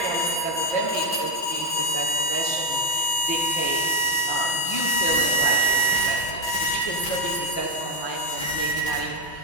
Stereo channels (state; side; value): late; right; 5.7 ms